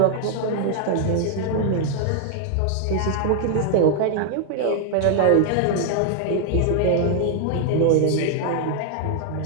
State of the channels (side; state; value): both; different; correlation 0.00